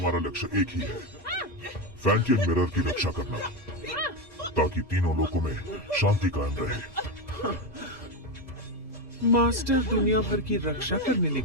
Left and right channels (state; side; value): normal; both; correlation 0.11